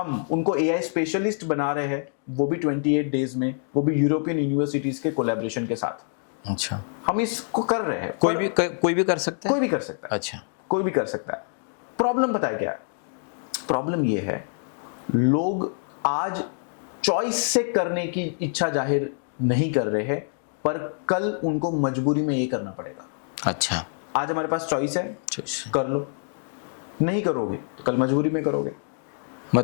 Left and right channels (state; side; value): silent; right; 61 dB below the other